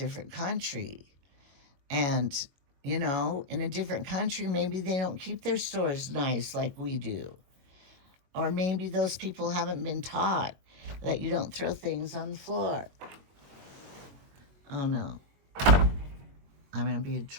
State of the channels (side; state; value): left; late; 22 ms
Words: country. And, in a different country, maybe they don't keep their stores nice like we do. Or maybe those people haven't been taught that you don't throw things on the floor. Oh no. I'm going to be in